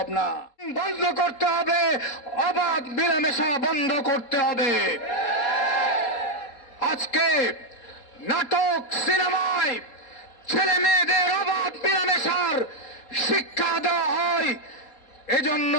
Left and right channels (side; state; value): right; late; 4.2 ms